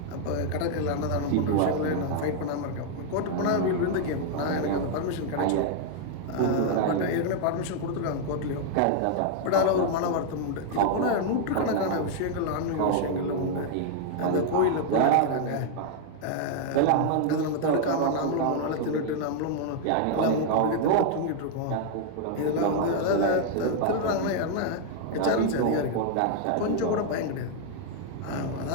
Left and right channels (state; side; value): different; both; correlation -0.01